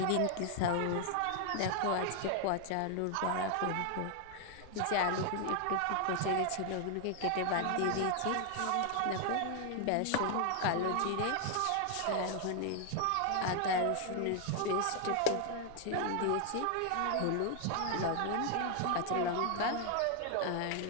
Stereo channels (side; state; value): both; different; correlation 0.00